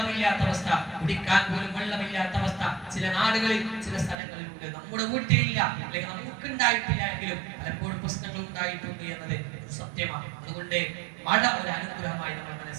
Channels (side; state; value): left; drops out; at 4.2 s